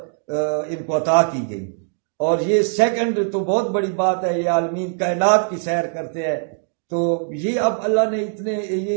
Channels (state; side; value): silent; left; digital silence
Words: ان کو عطا کی گئی. اور یہ سیکنڈ تو بہت بڑی بات ہے، یہ عالمین کائنات کی سیر کرتے ہیں. تو یہ اب اللہ نے یہ